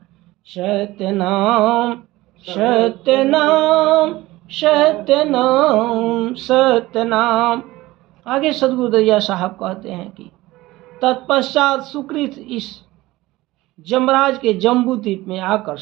सत्य नाम सत्य नाम सत्य नाम सत्य नाम। आगे सदगुरु दरिया साहब कहते हैं कि तत्पश्चात सुकृत इस जमराज के जम्बूद्वीप में आकर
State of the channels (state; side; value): quieter; left; 18.6 dB